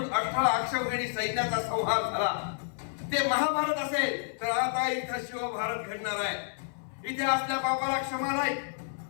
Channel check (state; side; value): silent; right; 56 dB below the other